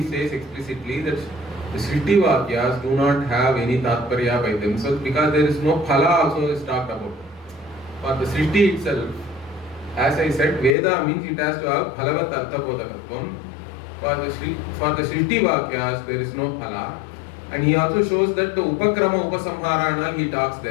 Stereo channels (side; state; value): right; drops out; at 10.8 s